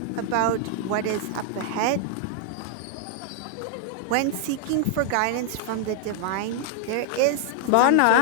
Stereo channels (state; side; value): different; both; correlation -0.01